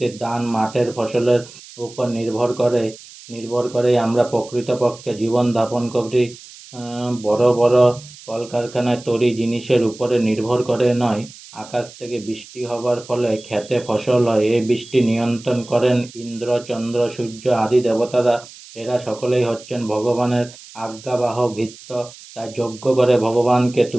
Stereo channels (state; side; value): noise; right; hiss, 19 dB below the sound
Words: দান মাঠের ফসলের উপর নির্ভর করেই আমরা প্রকৃতপক্ষে জীবন যাপন করি। বড় বড় কলকারখানায় তৈরি জিনিসের উপরে নির্ভর করে নয়। আকাশ থেকে বৃষ্টি হবার ফলে ক্ষেতে ফসল হয়, এই বৃষ্টি নিয়ন্ত্রণ করেন ইন্দ্র চন্দ্র সূর্য আদি দেবতারা। এরা সকলেই হচ্ছেন ভগবানের আজ্ঞাবাহক ভৃত্য। তাই যজ্ঞ করে ভগবানকে